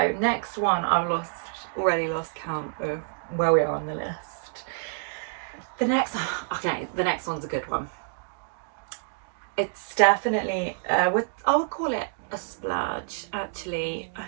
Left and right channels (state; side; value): silent; left; digital silence